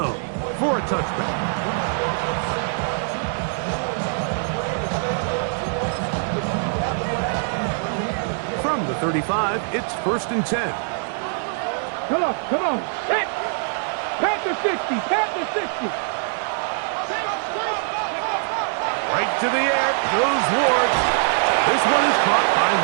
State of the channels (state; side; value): silent; left; 63 dB below the other